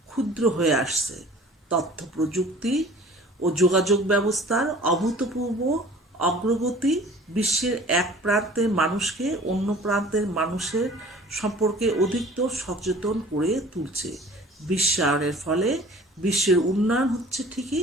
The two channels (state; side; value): normal; both; correlation 0.48